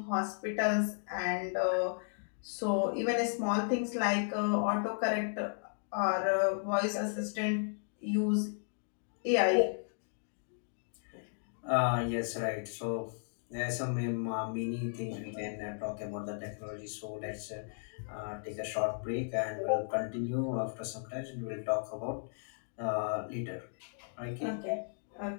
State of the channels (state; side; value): silent; right; digital silence